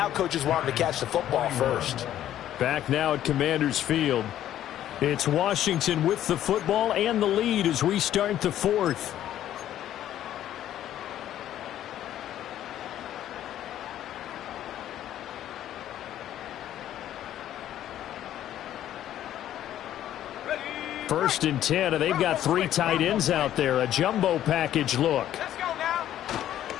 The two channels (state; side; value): quieter; right; 11.9 dB